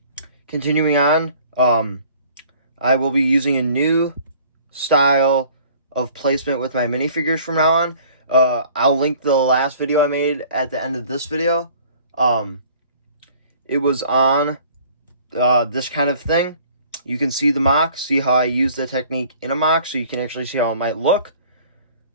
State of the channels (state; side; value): inverted; both; correlation -0.52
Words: continuing on, I will be using a new style of placement with my minifigures from now on. I'll link the last video I made at the end of this video. It was on this kind of thing. You can see the mock, see how I use the technique in a mock, so you can actually see how it might look.